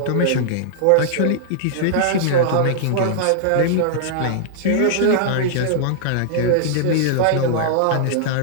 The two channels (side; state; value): both; different; correlation -0.01